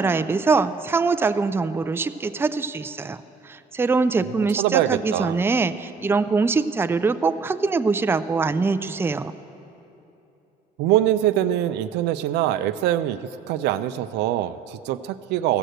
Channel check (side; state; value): left; quieter; 5.8 dB